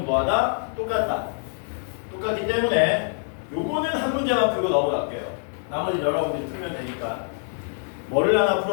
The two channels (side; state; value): right; silent; 62 dB below the other